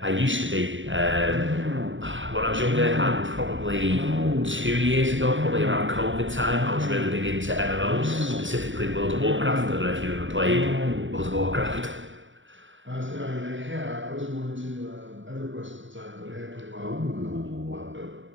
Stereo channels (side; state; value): left; late; 0.56 ms